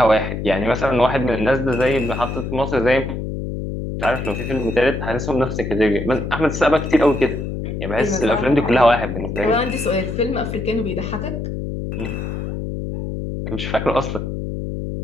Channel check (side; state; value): left; noise; hum, 5 dB below the sound